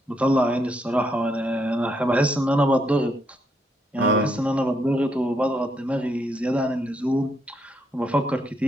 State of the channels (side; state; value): both; normal; correlation 0.76